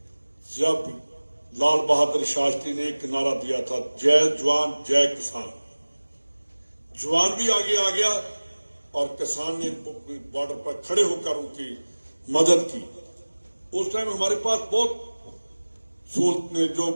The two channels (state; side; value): inverted; both; correlation -1.00